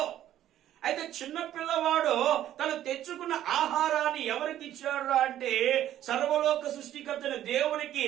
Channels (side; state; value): left; quieter; 12.1 dB